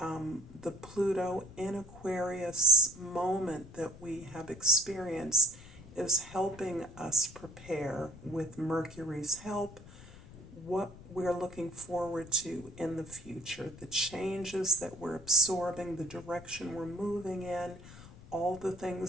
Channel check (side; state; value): left; noise; rumble, 18 dB below the sound